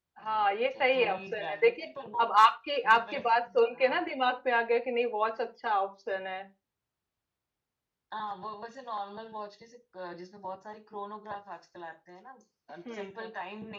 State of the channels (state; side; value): identical; both; correlation 1.00